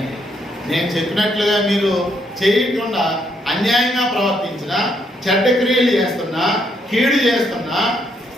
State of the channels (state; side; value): normal; both; correlation 0.74